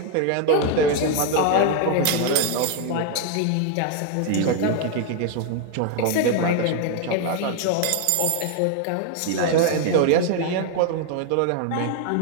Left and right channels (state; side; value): different; both; correlation 0.01